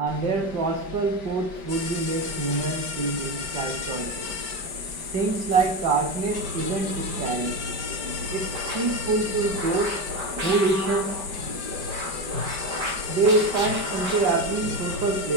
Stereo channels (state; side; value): late; left; 5.1 ms